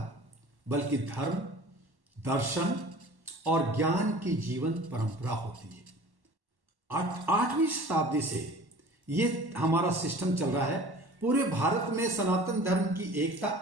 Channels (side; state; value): left; late; 1.1 ms